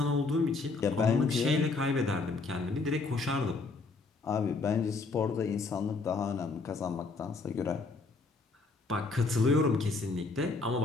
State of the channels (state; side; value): quieter; right; 4.0 dB